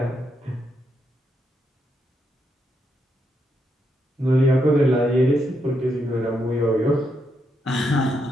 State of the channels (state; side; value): normal; both; correlation 0.80